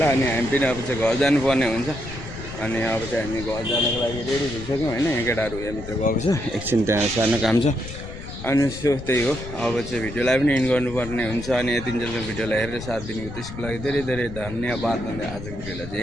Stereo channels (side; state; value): left; noise; rumble, 11 dB below the sound